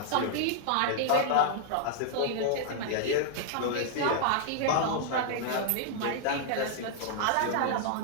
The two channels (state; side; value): different; both; correlation -0.01